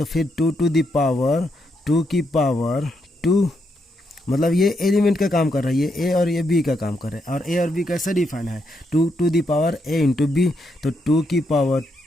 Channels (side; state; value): both; normal; correlation 0.79